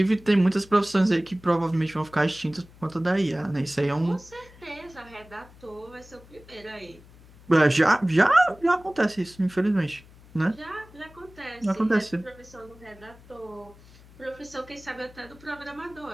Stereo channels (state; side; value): noise; left; hum, 23 dB below the sound